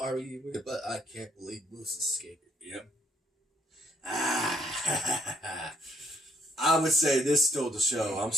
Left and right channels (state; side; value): normal; both; correlation 0.69